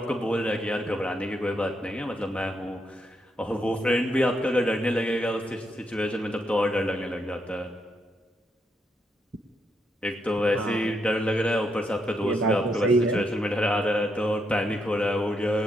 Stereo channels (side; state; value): both; normal; correlation 0.79